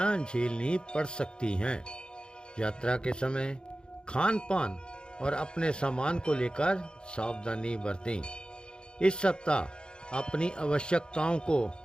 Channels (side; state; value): right; late; 0.050 ms